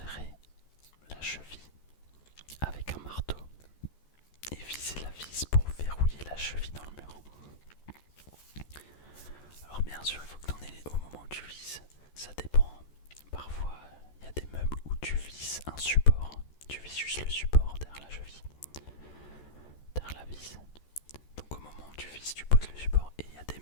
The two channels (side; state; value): right; late; 14 ms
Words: la cheville avec un marteau et visser la vis pour verrouiller la cheville dans le mur. Alors bien sûr, il faut que tu en aies au moment où tu vises. Ça dépend. Parfois, il y a des meubles où tu vises un support. Tu vises juste le support derrière la cheville, derrière la vis. Donc au moment où tu vises, tu poses le support. Et il y a des